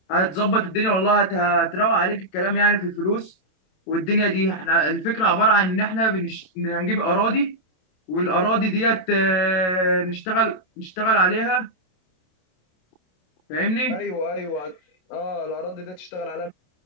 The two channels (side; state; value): right; late; 27 ms